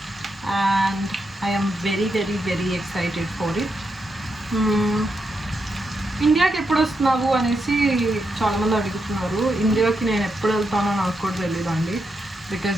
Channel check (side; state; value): both; normal; correlation 0.84